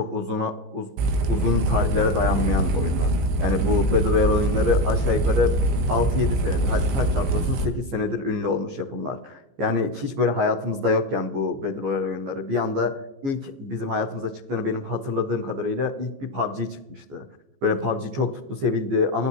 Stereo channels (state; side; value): late; left; 15 ms